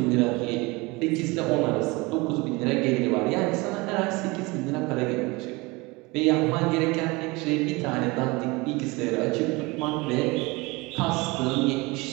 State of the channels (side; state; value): left; quieter; 24.3 dB